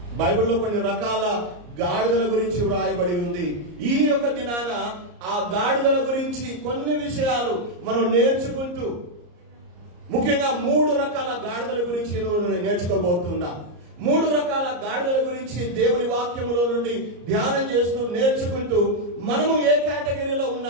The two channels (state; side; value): late; left; 34 ms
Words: ఉంది. ఈ యొక్క దినాన ఆ గాడిదల గురించి కొన్ని విషయాలు మనం నేర్చుకుంటూ, ముఖ్యంగా 3 రకాల గాడిదల గురించి నేర్చుకోబోతున్నా. 3 రకాల గాడిదల గురించి దేవుని వాక్యములో నుండి ధ్యానం చేస్తూ నేర్చుకుంటూ, మనము ఏ కేటగిరీలో